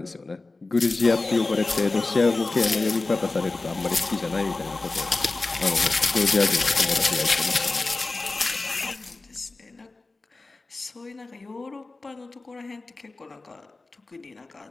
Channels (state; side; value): quieter; right; 3.4 dB